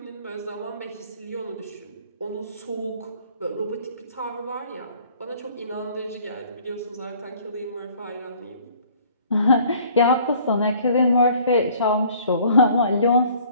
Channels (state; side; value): inverted; both; correlation -0.55